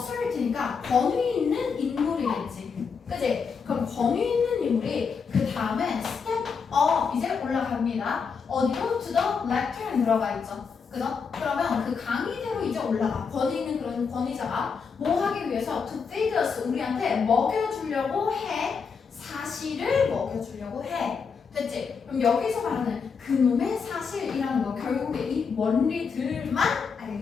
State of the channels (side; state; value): right; quieter; 5.8 dB